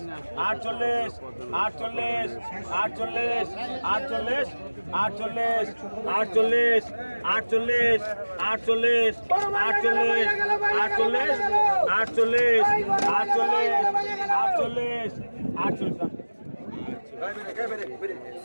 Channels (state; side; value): inverted; both; correlation -1.00